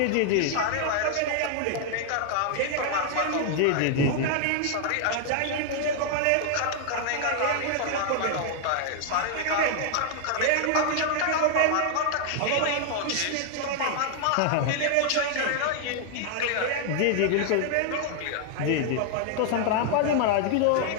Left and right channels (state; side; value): different; both; correlation 0.00